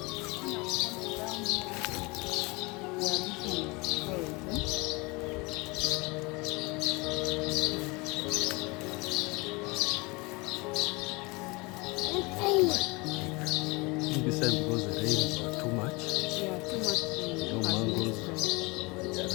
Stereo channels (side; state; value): right; quieter; 26.4 dB